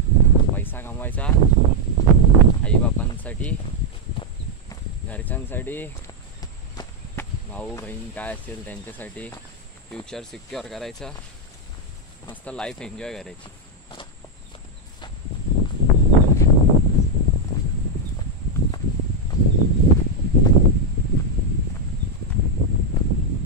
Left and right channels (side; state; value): both; normal; correlation 0.01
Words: पैसा कमवायचा, आईबापांसाठी, घरच्यांसाठी, भाऊ बहीण काय असेल त्यांच्यासाठी, फ्युचर सिक्युअर करायचं, मस्त लाईफ एन्जॉय करायची.